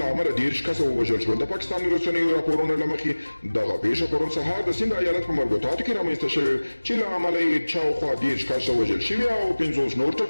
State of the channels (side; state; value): both; inverted; correlation -1.00